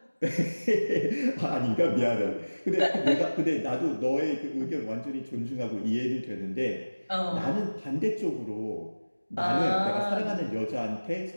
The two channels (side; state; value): both; inverted; correlation -1.00